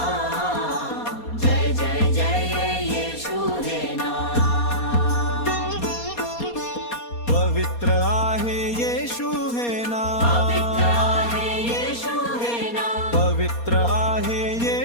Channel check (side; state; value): right; late; 4.2 ms